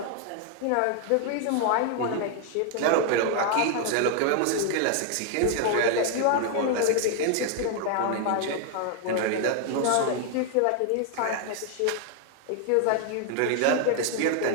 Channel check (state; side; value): different; both; correlation 0.00